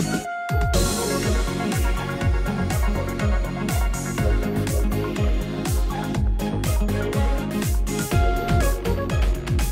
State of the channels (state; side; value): identical; both; correlation 1.00